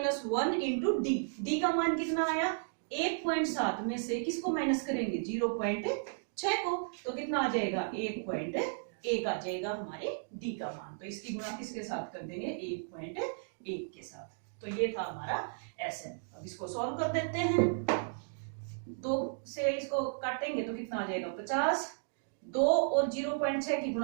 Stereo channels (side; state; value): left; silent; digital silence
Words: इंटू d का मान कितना आया 1.7 में से किसको माइनस करेंगे 0.6 को, तो कितना आ जाएगा 1.1 आ जाएगा हमारे d का मान। तो इसकी गुणा किसके साथ कर देंगे 1.1 के साथ। तो ये था हमारा Sn। अब इसको सॉल्व कर देते हैं, 2 से इसको काटेंगे तो कितना आ जाएगा 50, 2 और 0.6 की